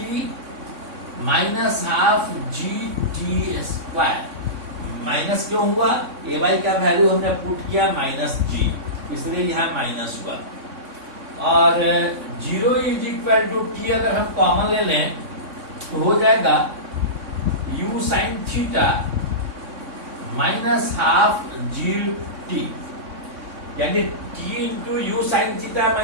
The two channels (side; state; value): left; late; 3.6 ms